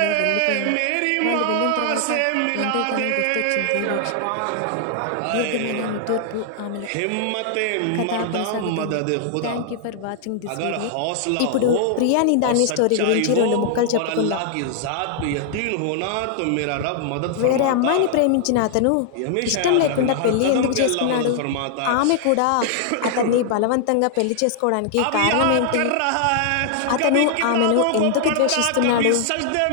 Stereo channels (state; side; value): different; both; correlation 0.00